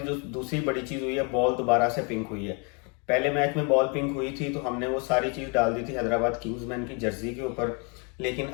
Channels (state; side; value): quieter; right; 34.1 dB